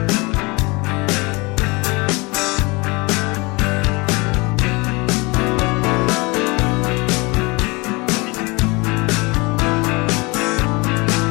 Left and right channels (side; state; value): right; quieter; 26.2 dB